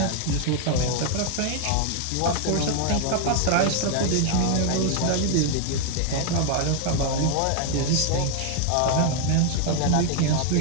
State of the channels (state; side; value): different; both; correlation 0.00